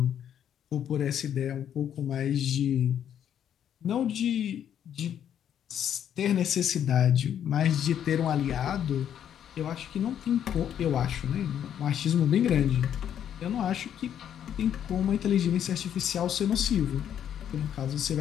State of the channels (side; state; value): right; quieter; 9.6 dB